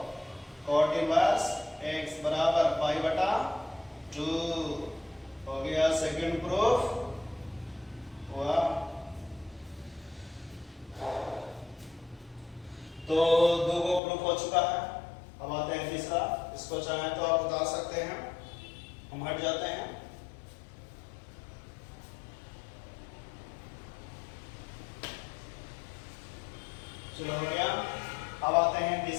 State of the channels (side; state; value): right; drops out; at 14.0 s